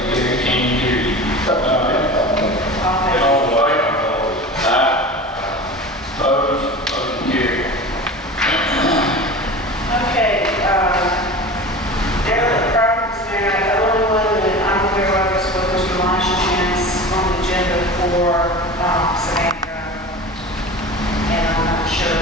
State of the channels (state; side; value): normal; both; correlation 0.33